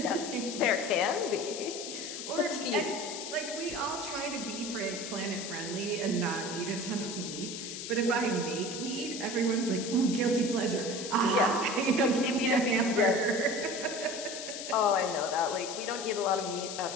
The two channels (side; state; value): left; noise; hiss, 7 dB below the sound